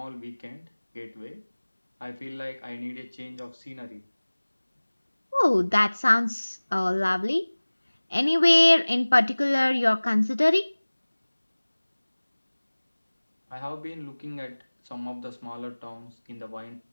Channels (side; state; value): both; inverted; correlation -1.00